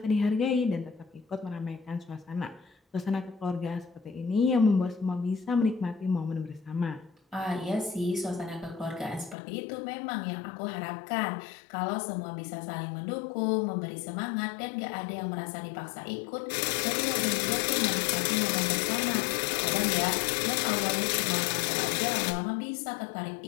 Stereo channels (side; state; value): right; drops out; at 9.3 s